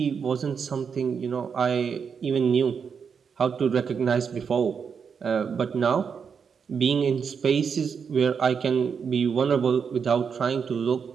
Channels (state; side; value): quieter; left; 6.4 dB